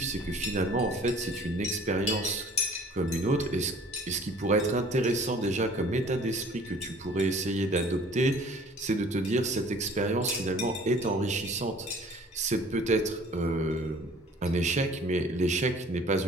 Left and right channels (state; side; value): normal; both; correlation 0.51